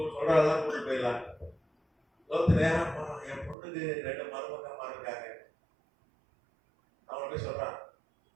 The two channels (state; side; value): drops out; left; at 3.6 s